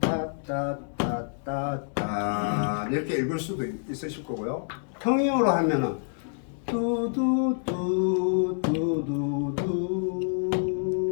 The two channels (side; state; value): right; silent; digital silence